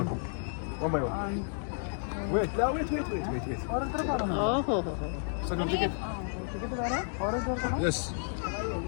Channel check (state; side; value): silent; right; 57 dB below the other